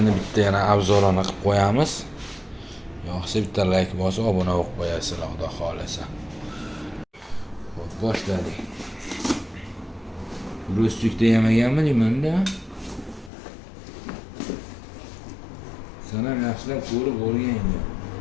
bitta yana obzorini qilib qo'yamiz. Yo'qsa bitta like bosib, obuna bo'lib qo'yasizlar, Xudo xolisa. Xo'p, boshladik. Ro'stlikda yemaganmi deyman-da. Sen ham yaxshilab ko'rib o'rganga.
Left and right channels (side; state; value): right; drops out; at 13.3 s